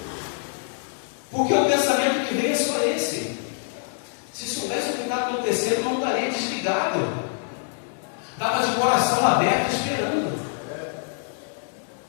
Porque o pensamento que vem é só esse. Se soubesse o que está acontecendo, não estaria desligado. Estava de coração aberto esperando.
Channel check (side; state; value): right; silent; digital silence